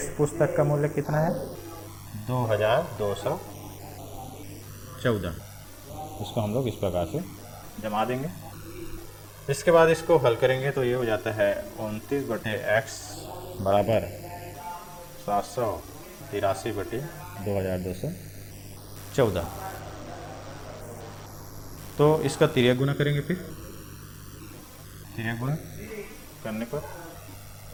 पुस्तक का मूल्य कितना है 2214। इसको हम लोग इस प्रकार से जमा देंगे। इसके बाद इसको हल करेंगे तो ये हो जाता है 29/x बराबर 783/2214। तो इसका तिर्यक गुना करेंगे। फिर तिर्यक गुना करने पर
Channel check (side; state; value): both; identical; correlation 1.00